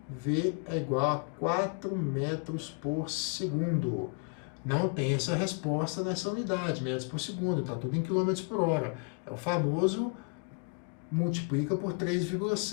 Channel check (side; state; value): right; quieter; 37.5 dB